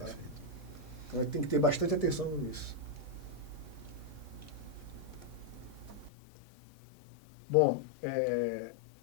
Então tem que ter bastante atenção nisso. Bom,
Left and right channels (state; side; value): drops out; right; at 6.1 s